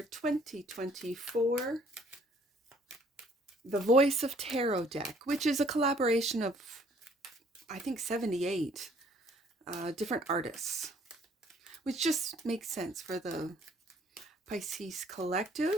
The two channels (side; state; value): both; normal; correlation 0.60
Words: 2024 The Voice of Tarot deck, which is a collaboration of, I think, 78 different artists, which just makes sense for the Pisces